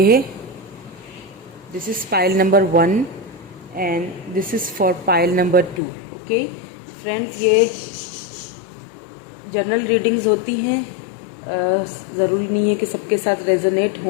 है, this is pile number 1 and this is for pile number 2। Okay friends, ये जनरल रीडिंग्स होती हैं, ज़रूरी नहीं है कि सबके साथ रेजोनेट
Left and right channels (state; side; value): drops out; right; at 5.8 s